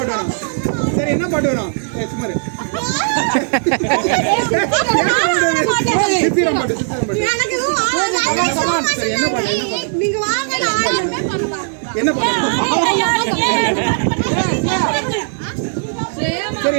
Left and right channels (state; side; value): silent; left; digital silence